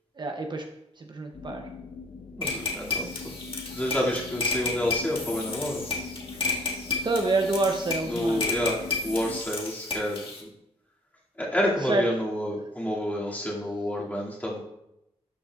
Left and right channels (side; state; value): both; normal; correlation 0.57